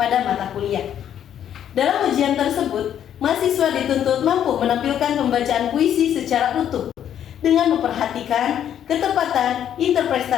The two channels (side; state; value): right; quieter; 9.9 dB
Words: mata kuliah. Dalam ujian tersebut, mahasiswa dituntut mampu menampilkan pembacaan puisi secara utuh dengan memperhatikan ketepatan